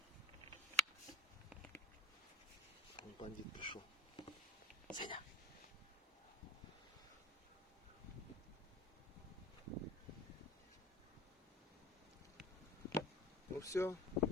Вон бандит пришел. Сеня. Ну все.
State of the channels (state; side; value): normal; both; correlation 0.37